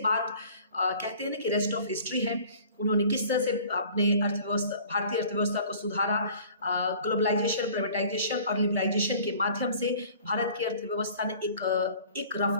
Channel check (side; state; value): both; inverted; correlation -0.49